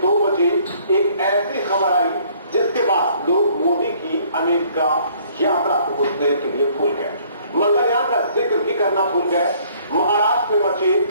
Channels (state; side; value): inverted; both; correlation -0.60